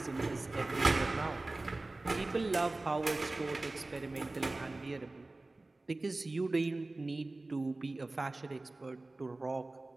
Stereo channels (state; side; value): quieter; left; 3.0 dB